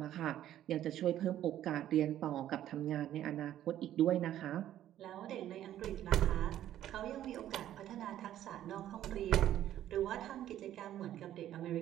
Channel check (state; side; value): quieter; left; 12.0 dB